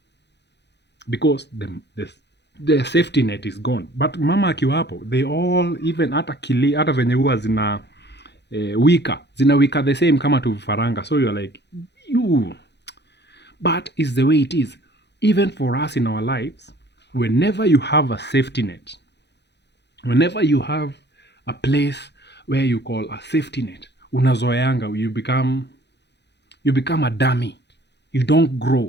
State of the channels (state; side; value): late; right; 0.50 ms